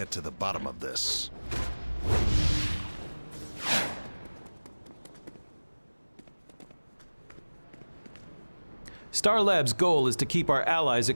to the bottom of this. Star Labs' goal is to keep our allies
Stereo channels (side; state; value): both; inverted; correlation -1.00